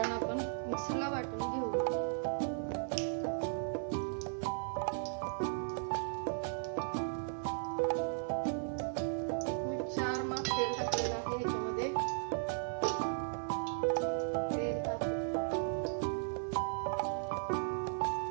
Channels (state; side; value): silent; left; 54 dB below the other